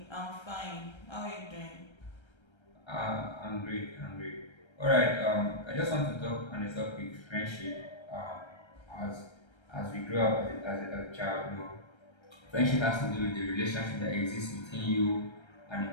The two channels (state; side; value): late; right; 1.3 ms